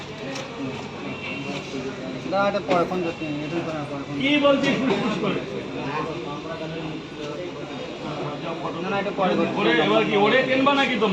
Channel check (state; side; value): identical; both; correlation 1.00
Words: কি বলছি ফুসফুস করে? এবার কি ওরে কিনবা নাকি